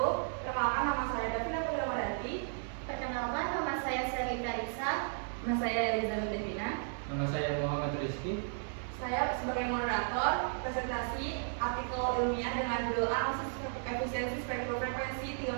Perkenalkan, nama saya Davina Putri. Perkenalkan, nama saya Selita Risa. Nama saya Elizabeth Devina. Nama saya Muhammad Rizky. Saya sebagai moderator presentasi artikel ilmiah dengan judul analisis efisiensi spektrum frekuensi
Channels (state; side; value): silent; left; digital silence